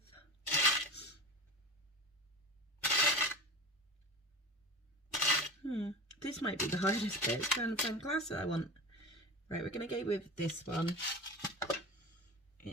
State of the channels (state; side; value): normal; both; correlation 0.30